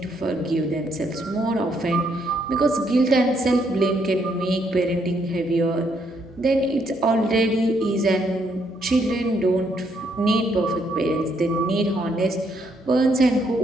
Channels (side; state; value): both; normal; correlation 0.73